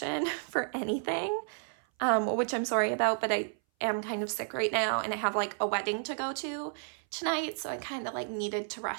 for anything, which I'm sorry about, but I am kind of sick right now and I have like a wedding to go to tonight, so I kind of like needed to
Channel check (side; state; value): left; silent; 57 dB below the other